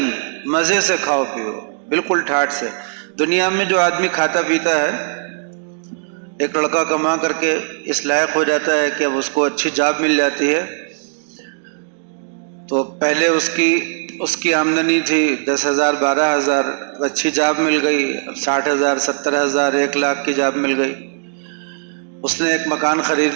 مزے سے کھاؤ پیو، بالکل ٹھاٹ سے۔ دنیا میں جو آدمی کھاتا پیتا ہے، ایک لڑکا کما کر کے اس لائق ہو جاتا ہے کہ اب اس کو اچھی جاب مل جاتی ہے، تو پہلے اس کی آمدنی تھی 10,000 12,000، اچھی جاب مل گئی، 60,000 70,000 1,00,000 کی جاب مل گئی، اس نے ایک مکان خرید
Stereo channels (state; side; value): silent; left; digital silence